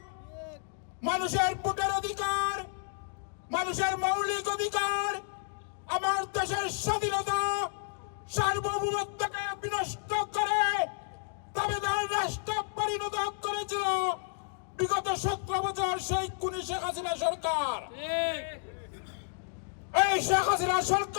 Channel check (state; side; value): silent; right; digital silence